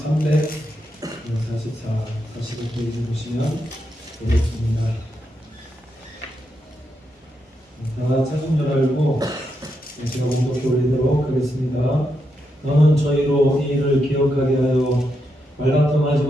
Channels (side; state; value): both; normal; correlation 0.83